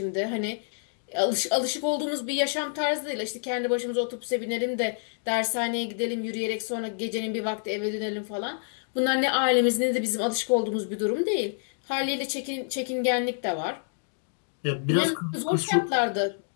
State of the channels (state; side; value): silent; right; digital silence